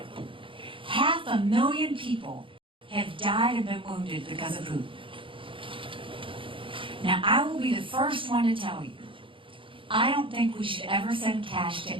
500,000 people have died and been wounded because of Putin. Now, I will be the first one to tell you, I don't think we should ever send cash to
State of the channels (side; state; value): left; late; 0.25 ms